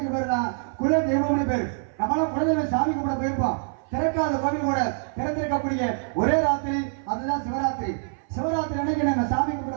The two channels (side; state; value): left; silent; 57 dB below the other